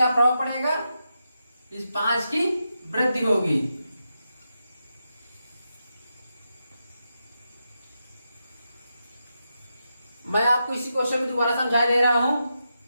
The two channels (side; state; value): both; inverted; correlation -0.87